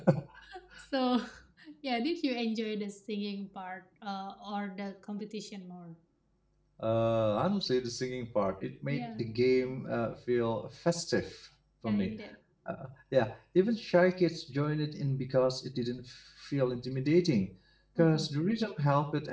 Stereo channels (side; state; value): both; identical; correlation 1.00